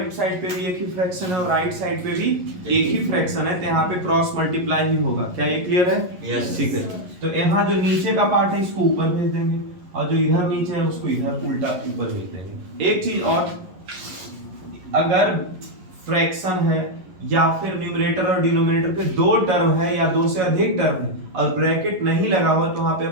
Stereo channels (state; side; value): late; left; 11 ms